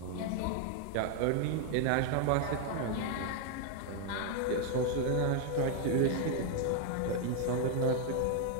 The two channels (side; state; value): both; different; correlation 0.00